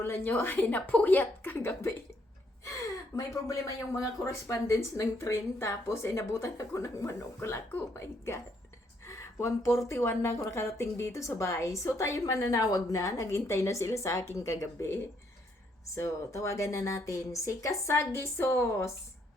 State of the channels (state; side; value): normal; both; correlation 0.72